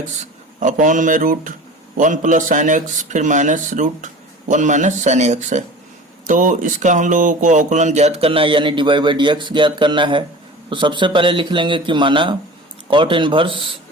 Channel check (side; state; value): both; normal; correlation 0.37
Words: upon में √1 प्लस साइन एक्स, फिर माइनस √1 माइनस साइन एक्स है। तो इसका हम लोगों को अवकलन ज्ञात करना है, यानी dy/dx ज्ञात करना है। तो सबसे पहले लिख लेंगे कि माना कॉट इनवर्स,